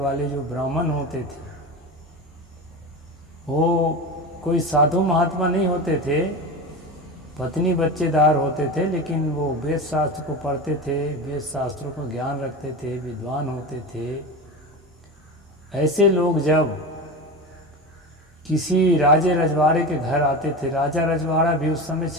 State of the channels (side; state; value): both; normal; correlation 0.25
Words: जो ब्राह्मण होते थे, वो कोई साधु महात्मा नहीं होते थे, पत्नी बच्चेदार होते थे, लेकिन वो वेद शास्त्र को पढ़ते थे, वेद शास्त्रों को ज्ञान रखते थे, विद्वान होते थे। ऐसे लोग जब किसी राजे रजवाड़े के घर आते थे, राजा रजवाड़ा भी उस समय